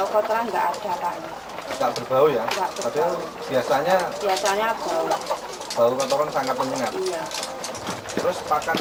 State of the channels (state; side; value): identical; both; correlation 1.00